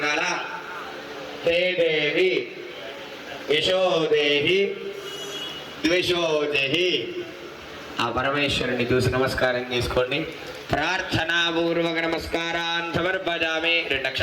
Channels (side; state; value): both; identical; correlation 1.00